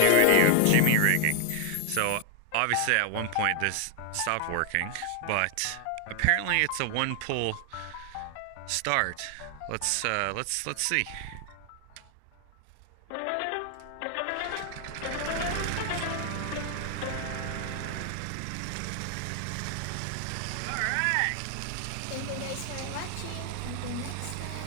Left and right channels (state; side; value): different; both; correlation 0.00